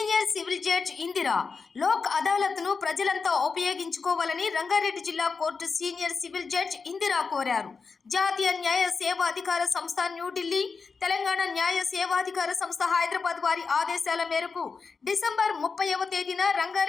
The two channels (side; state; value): right; quieter; 4.9 dB